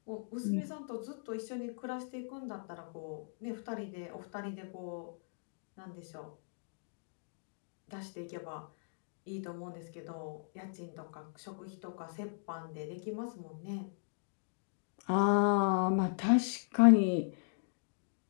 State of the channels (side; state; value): right; silent; digital silence